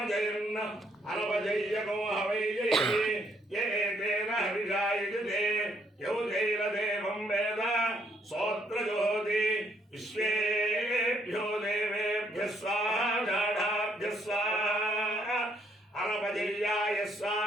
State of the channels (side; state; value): both; normal; correlation 0.70